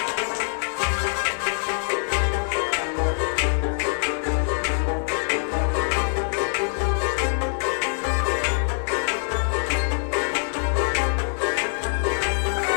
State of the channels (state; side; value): silent; right; digital silence